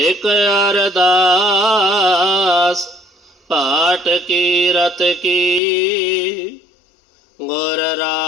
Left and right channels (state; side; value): drops out; right; at 5.6 s